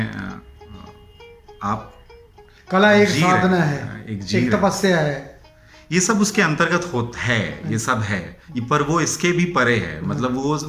आप कला एक जी रहे साधना हैं, है, एक एक तपस्या है, ये सब उसके अंतर्गत होता है, ये सब है, पर वो इसके भी परे है। मतलब वो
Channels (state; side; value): identical; both; correlation 1.00